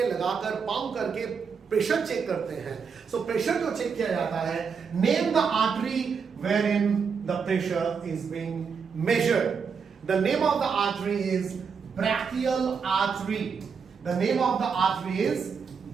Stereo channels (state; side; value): quieter; left; 6.0 dB